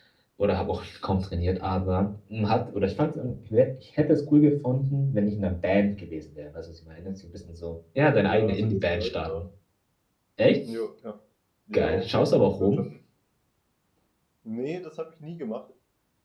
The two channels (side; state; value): both; identical; correlation 1.00